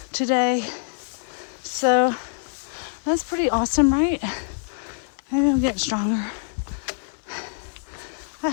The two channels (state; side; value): silent; right; 60 dB below the other